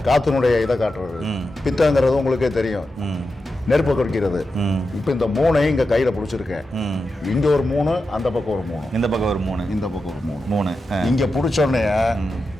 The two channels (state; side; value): normal; both; correlation 0.90